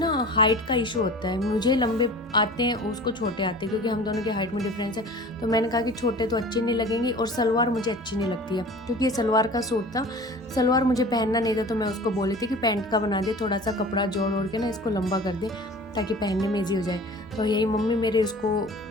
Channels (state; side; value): normal; both; correlation 0.41